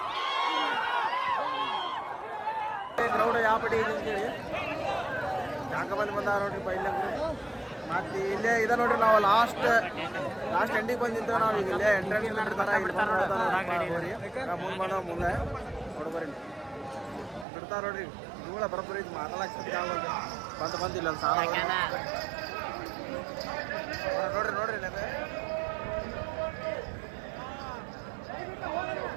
ಕ್ರೌಡ್ ಯಾವ ಪಡಿ ಇದೆ ಅಂತೇಳಿ ಜಾಗ ಬಂದು ಬಂದಾರ ನೋಡ್ರಿಪ್ಪ. ಇಲ್ಲೇ ಮತ್ತೆ ಇಲ್ಲೇ ಇದೆ ನೋಡ್ರಿ. ನಾವು ಲಾಸ್ಟ್ ಎಂಡಿಗೆ ಬಂದು ನಿಂತೇವೆ. ನಾವು ಈಗ ಇಲ್ಲೇ ಎಂಟ್ರೆನ್ಸ್ ಬಿಡ್ತಾರ. ಹೋರಿ ಮುಂದೆ ಬಂದ ಮುಂದೆ ನೋಡ್ಬರಿ ಬಿಡ್ತಾರ ನೋಡ್ರಿ. ಇವುಗಳ ಬರೋಬ್ಬರಿ ಇದು ಮಾತಾಡಕ್ಕೆ ಬಂದಿಲ್ಲ ಸಾಲ ನೋಡ್ರಿ. ನೋಡ್ರಿ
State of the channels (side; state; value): left; drops out; at 17.4 s